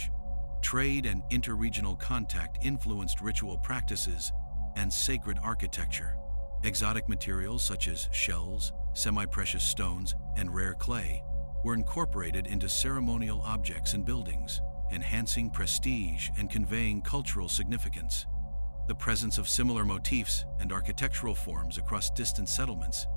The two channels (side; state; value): both; inverted; correlation -1.00